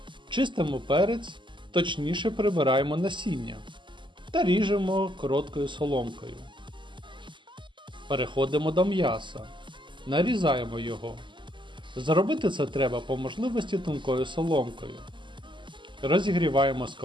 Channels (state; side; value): late; left; 0.23 ms